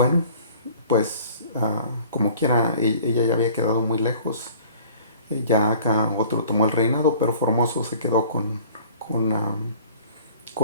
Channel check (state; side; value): inverted; both; correlation -0.49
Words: pues como quiera, ella ya había quedado muy lejos. Ya acá otro tomó el reinado, pero Formoso se quedó con, um,